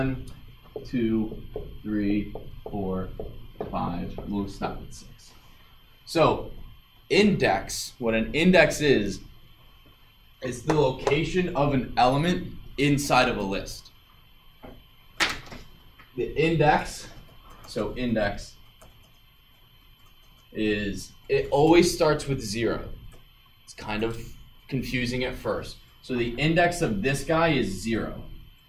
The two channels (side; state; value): both; identical; correlation 1.00